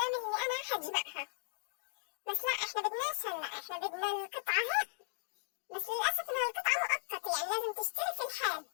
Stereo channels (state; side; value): silent; right; digital silence